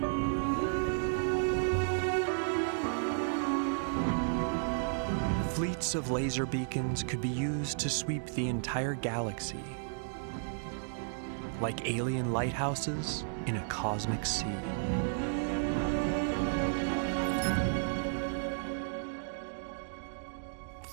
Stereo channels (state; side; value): silent; left; digital silence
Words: Fleets of laser beacons could be used to sweep the entire galaxy, like alien lighthouses in a cosmic sea.